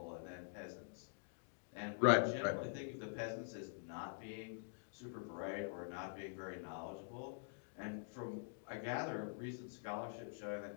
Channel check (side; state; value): right; silent; digital silence